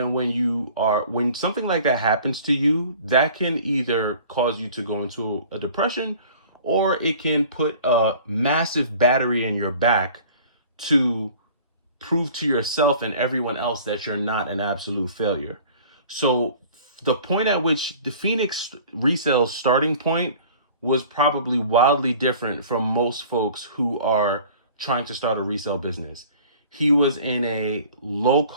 when something like that happens to you, that can either cause you to go into a depression, or it can put a massive battery in your back to prove to yourself and everyone else that you're not an absolute failure. So the point at which the Phoenix Resale's starting point was probably wildly different from most folks who are trying to start a resale business. He was in a low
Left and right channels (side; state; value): both; inverted; correlation -0.47